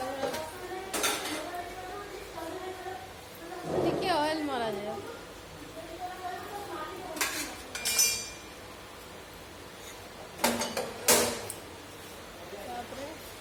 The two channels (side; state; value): both; identical; correlation 1.00